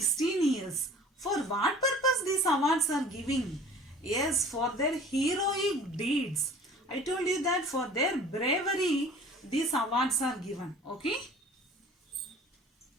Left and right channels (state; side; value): normal; both; correlation 0.46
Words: years. For what purpose these awards are giving? Yes, for their heroic deeds. I told you that for their bravery, these awards are given. Okay.